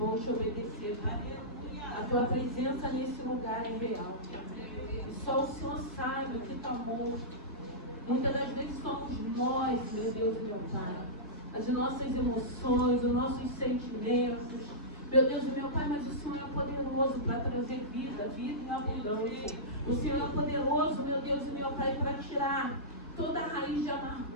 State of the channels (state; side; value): normal; both; correlation -0.16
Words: te obedecer. A tua presença nesse lugar é real. E só o Senhor sabe o que está morto. Muitas das vezes somos nós, meu Deus e meu Pai. As nossas emoções, os nossos sentimentos. Meu Deus e meu Pai, mas o Senhor é poderoso para trazer vida, vida em abundância. O Senhor é poderoso, meu Deus e meu Pai, para tirar toda a raiz de